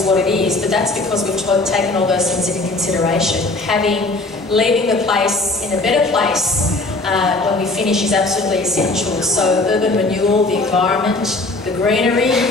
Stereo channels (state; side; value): quieter; right; 3.1 dB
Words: what it is, but that's because we've taken all those things into consideration. Leaving the place in a better place when we finish is absolutely essential. So urban renewal, the environment, the greenery